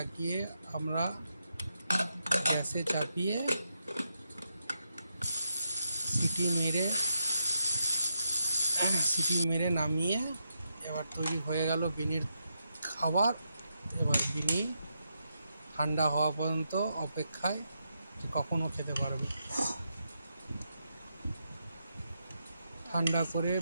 আমরা গ্যাসে চাপিয়ে সিটি মেরে নামিয়ে এবার তৈরি হয়ে গেল বিনির খাবার। এবার বিনি ঠান্ডা হওয়া পর্যন্ত অপেক্ষায়, যে কখনও খেতে পারবে। ঠান্ডা করে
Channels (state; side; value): inverted; both; correlation -0.83